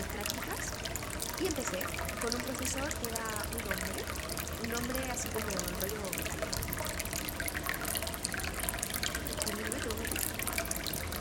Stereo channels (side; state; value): both; identical; correlation 1.00